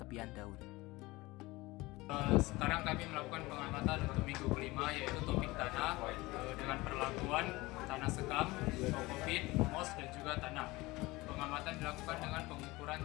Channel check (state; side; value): quieter; right; 21.1 dB